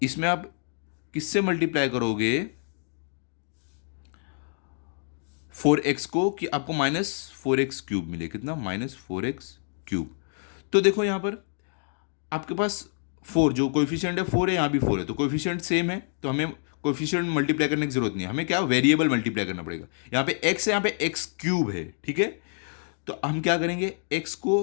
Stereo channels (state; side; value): silent; right; 60 dB below the other